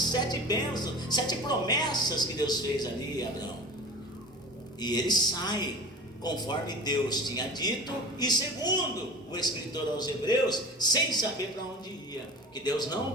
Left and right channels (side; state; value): both; normal; correlation 0.37